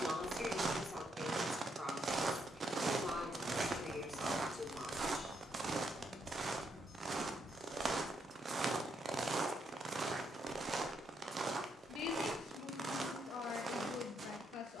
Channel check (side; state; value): both; normal; correlation 0.77